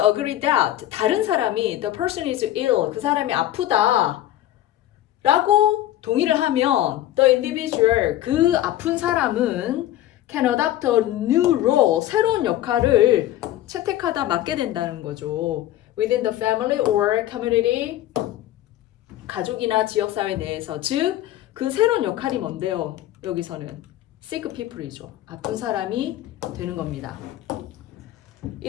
that 다른 사람이 the person is ill, 그 사람이 아프다 라고 동의를 하면 the individual, 그 아픈 사람은 can adopt a new role, 새로운 역할을 채택하다 맡게 된다는 거죠. Within the family or community, 가족이나 지역사회 내에서. 즉, 그 새로운 역할이 뭔데요? 여기서는 sick people이죠. 아픈 사람이 되는 겁니다.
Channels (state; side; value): quieter; right; 13.5 dB